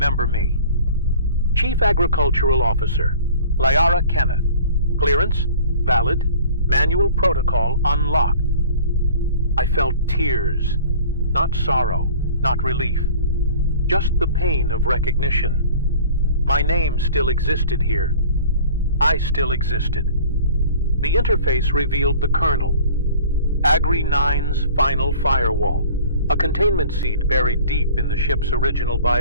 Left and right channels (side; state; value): both; inverted; correlation -0.46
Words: me. Chief Agricultural Officer, Lyara Kenneth. Clearance, valid. Manual protocol unlocked. I felt tears, not sorrow, not relief. Just the pain of recognition. My name still existed here. I still existed. The interface revealed the kernel. AGRI-9's final firewall. A containment seed buried deep in the ship's original